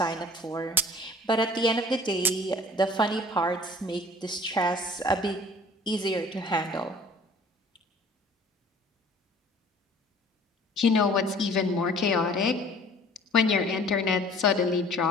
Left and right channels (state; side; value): normal; both; correlation 0.50